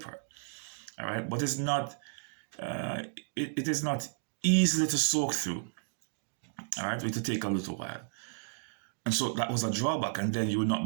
All right, but it's not. It is not easily to soak through. All right, it will take a little while, and so that was a drawback. And then you would not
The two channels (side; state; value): left; silent; digital silence